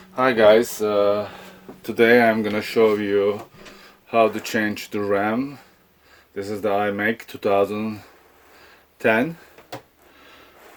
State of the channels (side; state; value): both; identical; correlation 1.00